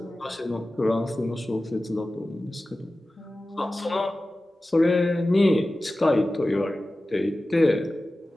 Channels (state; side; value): normal; both; correlation 0.95